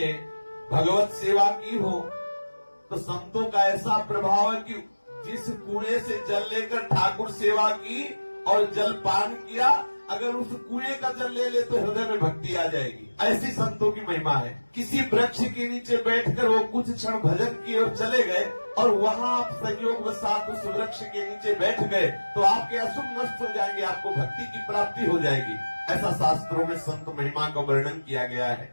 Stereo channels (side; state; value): both; inverted; correlation -1.00